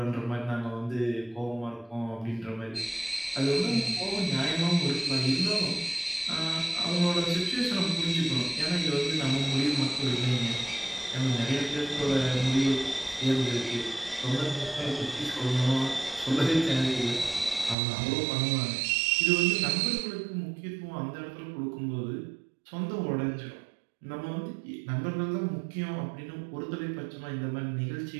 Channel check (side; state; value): left; drops out; at 17.8 s